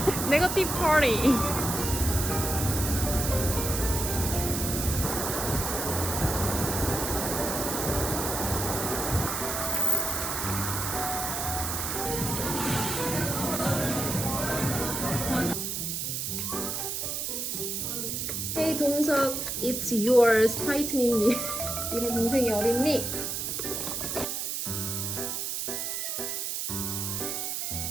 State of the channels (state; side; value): noise; right; hiss, 2 dB below the sound